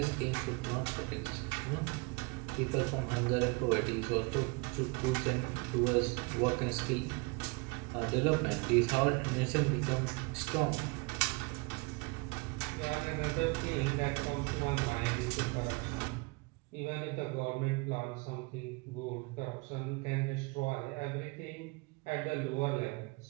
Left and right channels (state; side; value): quieter; left; 28.7 dB